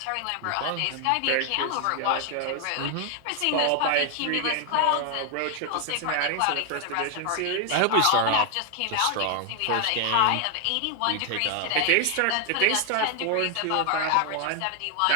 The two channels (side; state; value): both; different; correlation 0.00